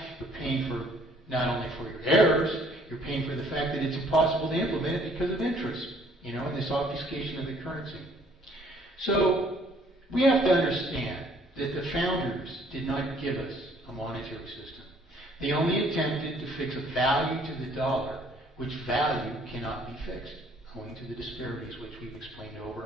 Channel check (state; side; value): normal; both; correlation 0.61